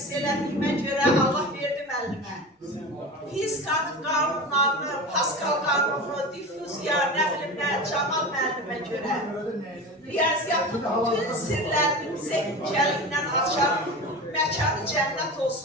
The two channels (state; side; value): normal; both; correlation 0.29